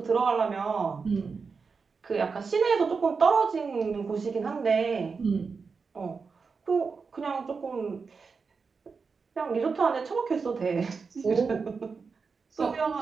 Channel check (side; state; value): left; quieter; 5.0 dB